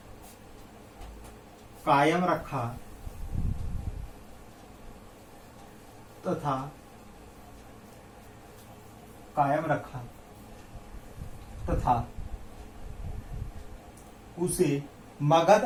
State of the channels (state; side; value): identical; both; correlation 1.00